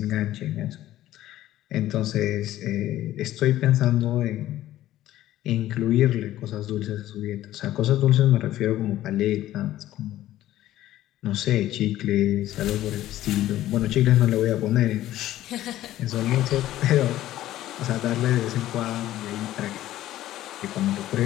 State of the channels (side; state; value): right; quieter; 14.1 dB